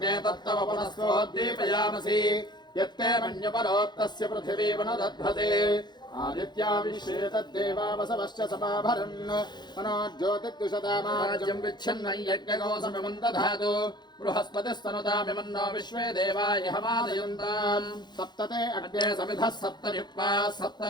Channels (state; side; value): late; right; 0.21 ms